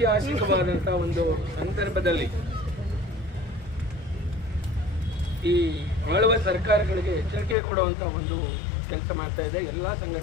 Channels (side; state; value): right; drops out; at 7.6 s